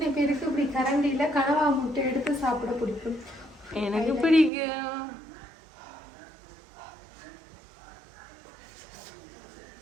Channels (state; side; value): drops out; left; at 4.5 s